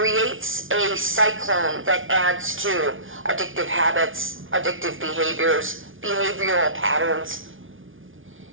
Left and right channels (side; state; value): left; late; 0.57 ms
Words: a cyclone that adds to addictive habits, addictive behaviors, behavioral patterns.